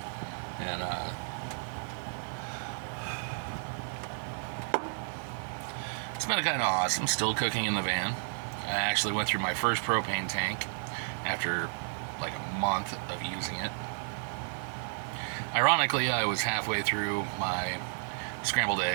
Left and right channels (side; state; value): left; silent; 56 dB below the other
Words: And it's been kind of awesome, still cooking in the van. I actually went through my first propane tank after like a month of using it. Ironically, I was halfway through my scrambled